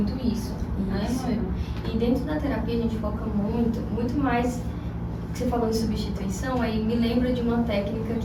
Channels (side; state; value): both; identical; correlation 1.00